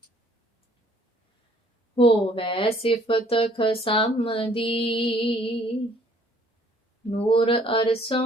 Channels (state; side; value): normal; both; correlation 0.60